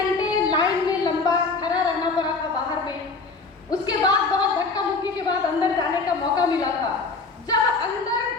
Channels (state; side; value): quieter; right; 4.1 dB